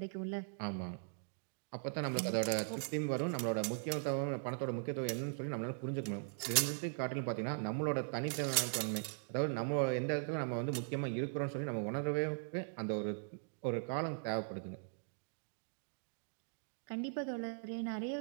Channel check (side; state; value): left; silent; digital silence